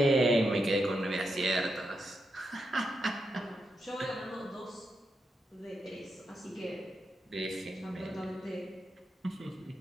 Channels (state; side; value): normal; both; correlation 0.85